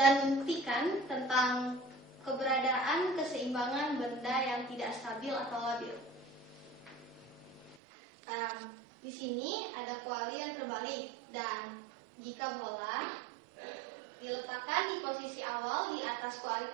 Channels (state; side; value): drops out; left; at 7.8 s